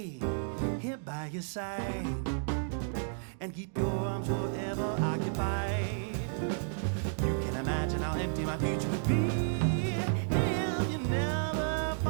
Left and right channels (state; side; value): silent; left; digital silence